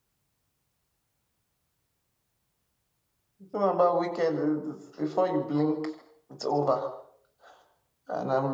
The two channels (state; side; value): identical; both; correlation 1.00